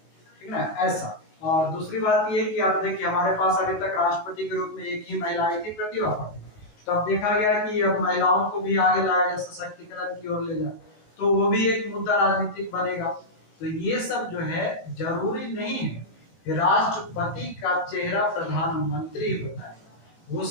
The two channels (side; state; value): right; late; 19 ms